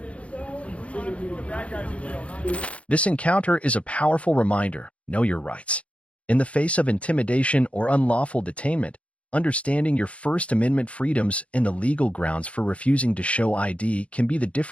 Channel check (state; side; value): late; right; 0.063 ms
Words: This encounter is a powerful reminder: know your rights. In the face of intimidation or unlawful detainment, understanding your First Amendment freedoms and the legal grounds for refusing to show ID can be the